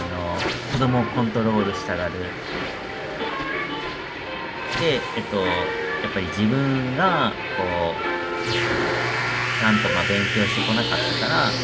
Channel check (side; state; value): both; identical; correlation 1.00